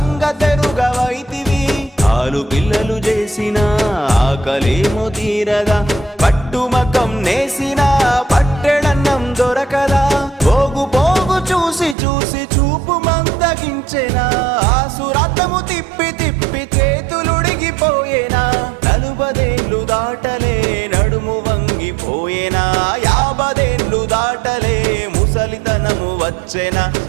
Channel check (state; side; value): drops out; left; at 12.0 s